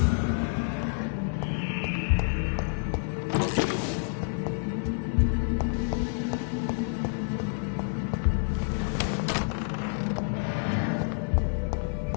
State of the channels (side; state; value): right; silent; 58 dB below the other